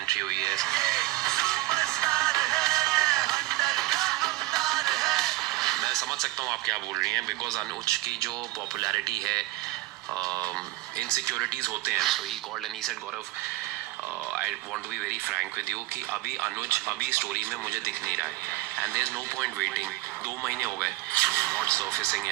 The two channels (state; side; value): quieter; left; 18.9 dB